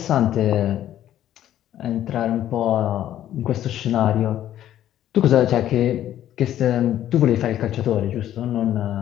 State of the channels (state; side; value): quieter; right; 11.9 dB